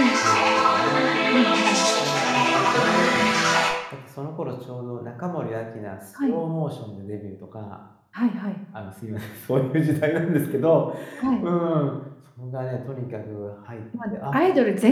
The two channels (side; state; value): both; identical; correlation 1.00